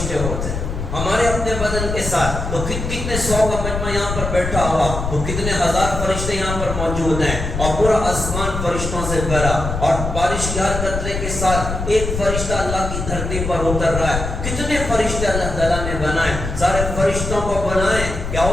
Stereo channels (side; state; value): left; noise; rumble, 4 dB below the sound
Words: ہوتے ہیں ہمارے اپنے بدن کے ساتھ، تو کتنے 100 کا مجمع یہاں پر بیٹھا ہوا، تو کتنے ہزار فرشتے یہاں پر موجود ہیں، اور پورا آسمان فرشتوں سے بھرا، اور بارش کے ہر قطرے کے ساتھ ایک فرشتہ اللہ کی دھرتی پر اتر رہا ہے۔ کتنے فرشتے اللہ تعالیٰ نے بنائے، سارے فرشتوں کو بنائیں کہ